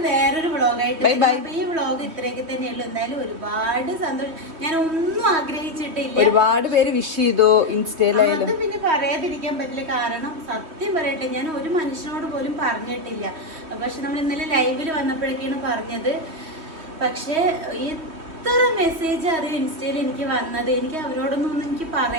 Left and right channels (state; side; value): late; left; 3.1 ms